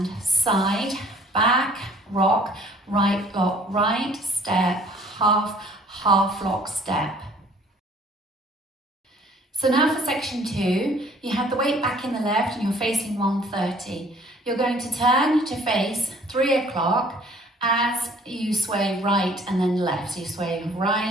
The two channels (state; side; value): normal; both; correlation 0.56